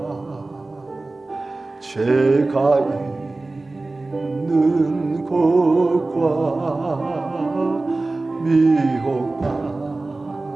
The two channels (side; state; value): left; quieter; 3.2 dB